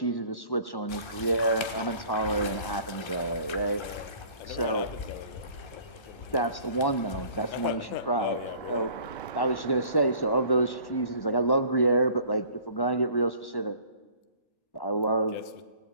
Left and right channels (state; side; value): late; right; 1.3 ms